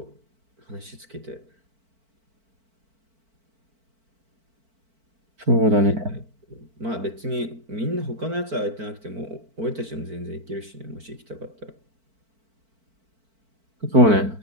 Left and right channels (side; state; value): left; late; 4.5 ms